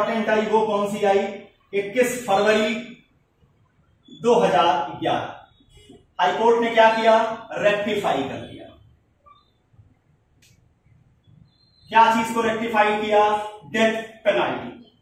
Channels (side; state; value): both; identical; correlation 1.00